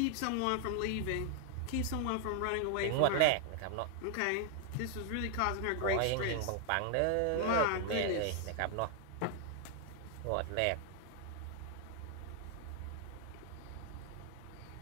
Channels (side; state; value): both; different; correlation 0.00